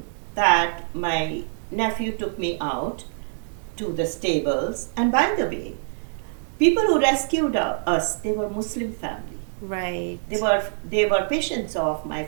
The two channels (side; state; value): left; silent; digital silence